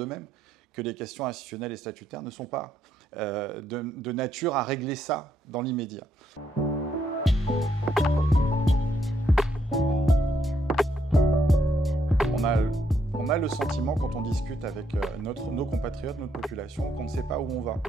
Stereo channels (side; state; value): both; normal; correlation 0.75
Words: que les questions institutionnelles et statutaires ne sont pas de nature à régler ça dans l'immédiat. On a le sentiment, quand on discute avec nos compatriotes, notre population, qu'on ne sait pas où on va,